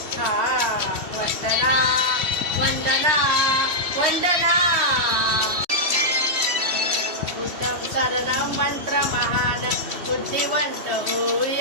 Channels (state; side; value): late; left; 3.1 ms